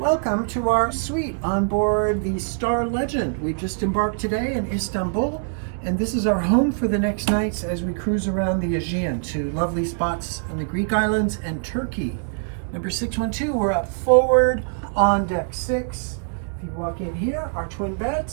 to our suite on board the Star Legend. We just embarked today in Istanbul, and this is our home for the next nights as we cruise around the Aegean to lovely spots in the Greek islands and Turkey. Number 612, we're up forward on deck 6. If you walk in here, our twin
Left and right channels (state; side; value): silent; left; digital silence